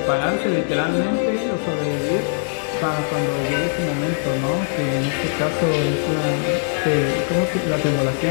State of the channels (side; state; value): right; silent; digital silence